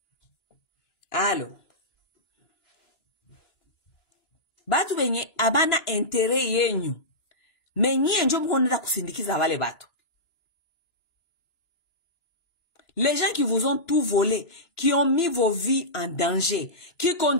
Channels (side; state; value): right; late; 2.9 ms